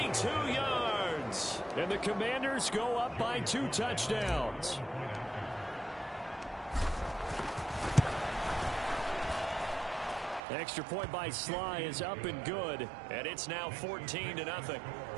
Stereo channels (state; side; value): drops out; left; at 10.4 s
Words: yards. And the Commanders go up by 2 touchdowns. Extra point by Sly is up and good. And it's now 14-0.